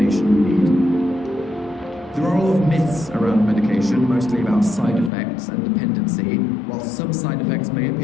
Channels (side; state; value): right; drops out; at 5.1 s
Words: you need. There are a lot of myths around medication, mostly about side effects and dependency. While some side effects may